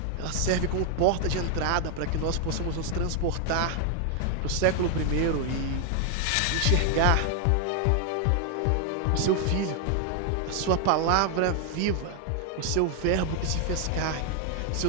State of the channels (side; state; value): both; different; correlation 0.00